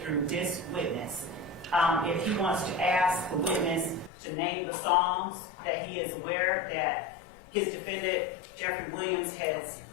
through this witness. If he wants to ask the witness to name the songs that he is aware that his defendant, Jeffery Williams, has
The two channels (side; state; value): right; drops out; at 4.1 s